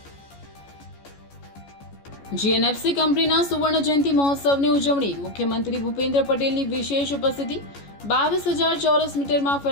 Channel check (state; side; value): late; right; 14 ms